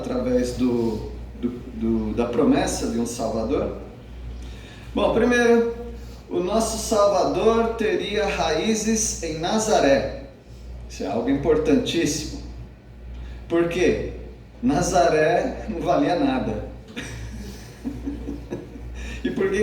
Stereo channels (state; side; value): identical; both; correlation 1.00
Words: da promessa de um Salvador. Bom, primeiro, o nosso Salvador teria raízes em Nazaré. Isso é algo importantíssimo. Por quê? Nazaré não valia nada. E por